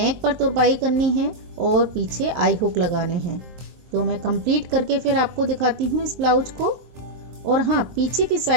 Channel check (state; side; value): late; left; 23 ms